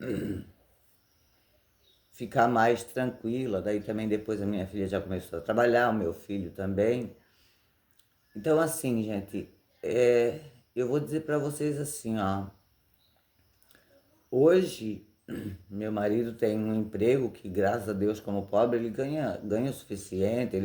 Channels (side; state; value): both; identical; correlation 1.00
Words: ficar mais tranquila. Daí também depois a minha filha já começou a trabalhar, o meu filho também. Então assim, gente, eu vou dizer para vocês assim, ó. Hoje, meu marido tem um emprego que, graças a Deus, como pobre, ele ganha o suficiente,